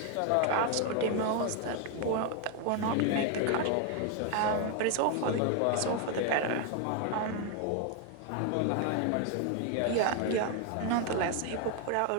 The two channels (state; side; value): different; both; correlation 0.01